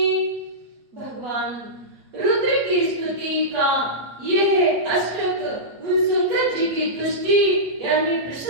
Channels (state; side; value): late; left; 8.4 ms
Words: भगवान रुद्र की स्तुति का यह अष्टक उन शंकर जी की तुष्टि यानी